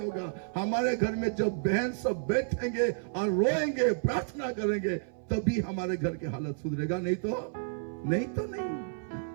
हमारे घर में जब बहन सब बैठेंगे और रोएंगे, प्रार्थना करेंगे, तभी हमारे घर की हालत सुधरेगा। नहीं तो नहीं।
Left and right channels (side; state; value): left; silent; 56 dB below the other